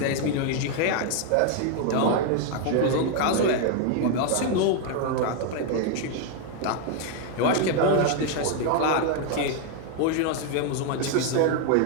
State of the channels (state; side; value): different; both; correlation 0.00